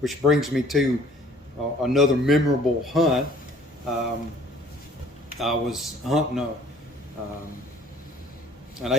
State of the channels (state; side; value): normal; both; correlation 0.56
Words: brings me to another memorable hunt. I was hunting an